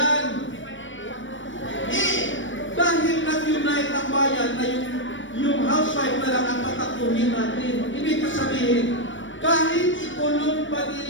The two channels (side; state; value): right; late; 0.56 ms